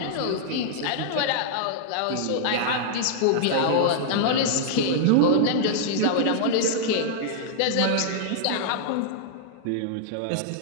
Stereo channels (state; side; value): different; both; correlation -0.01